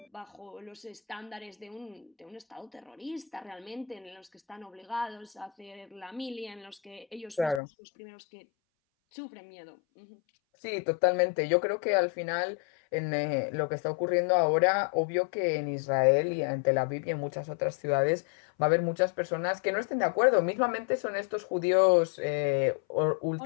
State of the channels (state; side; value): drops out; right; at 7.6 s